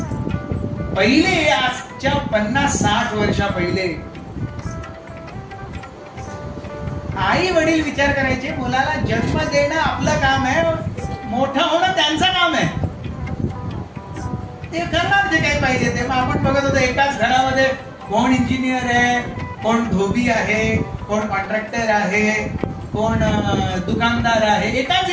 पहिले आजच्या 50-60 वर्षा पहिले आई वडील विचार करायचे मुलाला जन्म देणं आपलं काम आहे, मोठं होणं त्यांचं काम आहे. ते करणार जे काही पाहिजे ते. मग आपण बघत होतो एकाच घरामध्ये कोण इंजिनियर आहे, कोण धोबी आहे, कोण कॉन्ट्रॅक्टर आहे, कोण दुकानदार आहे, एकाच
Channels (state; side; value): identical; both; correlation 1.00